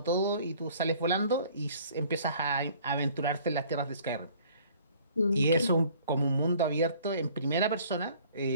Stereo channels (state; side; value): inverted; both; correlation -0.54